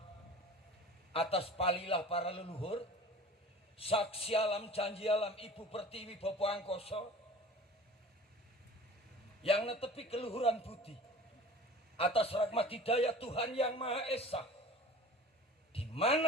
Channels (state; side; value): normal; both; correlation 0.42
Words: atas palilah para leluhur, saksi alam janji alam Ibu Pertiwi Bopo Angkoso yang netepi keluhuran budi atas rahmat hidayah Tuhan Yang Maha Esa, di